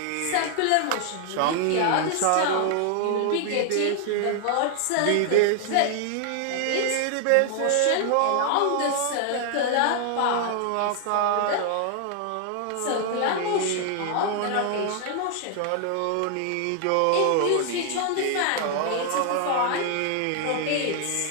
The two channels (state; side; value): different; both; correlation 0.00